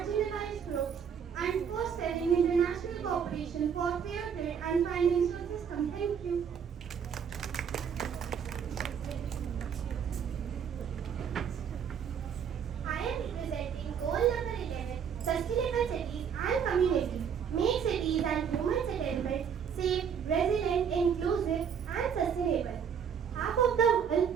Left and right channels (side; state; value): left; quieter; 7.5 dB